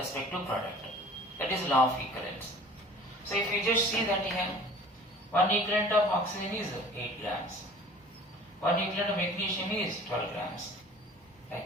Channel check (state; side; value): normal; both; correlation 0.46